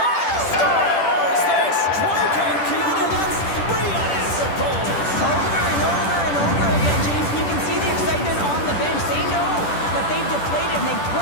Scores! They strike again, and that's 3 unanswered goals. Over and over and over again, James. You can see the excitement on the bench. They know that they've deflated and they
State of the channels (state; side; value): late; right; 10 ms